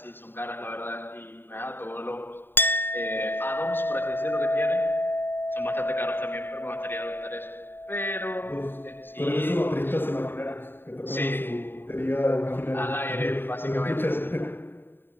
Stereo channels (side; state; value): right; late; 0.098 ms